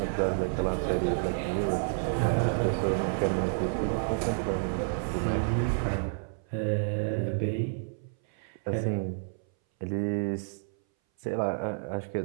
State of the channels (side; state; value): left; silent; 58 dB below the other